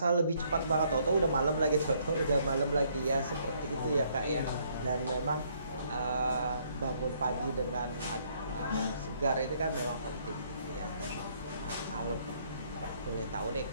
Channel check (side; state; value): both; inverted; correlation -0.67